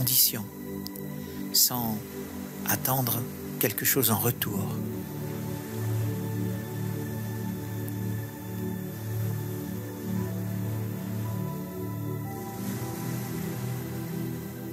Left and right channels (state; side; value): identical; both; correlation 1.00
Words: sans attendre quelque chose en retour.